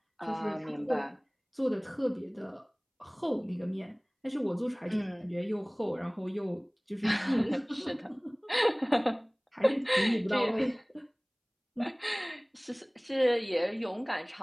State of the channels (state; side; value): identical; both; correlation 1.00